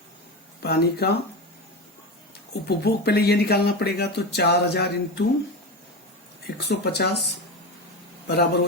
पानी का उपभोग पहले ये निकालना पड़ेगा। तो 4000 इंटू 150 बराबर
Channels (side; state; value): both; normal; correlation 0.21